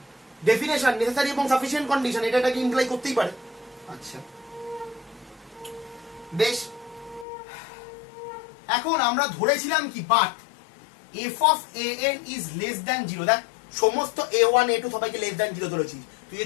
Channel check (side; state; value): right; drops out; at 7.2 s